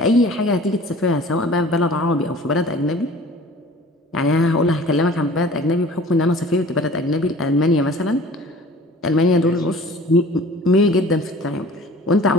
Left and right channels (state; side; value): normal; both; correlation 0.46